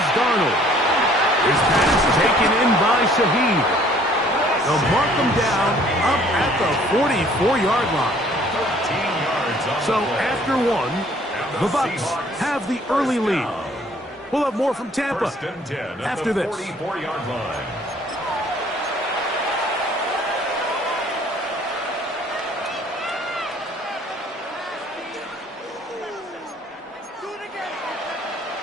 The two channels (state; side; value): normal; both; correlation 0.57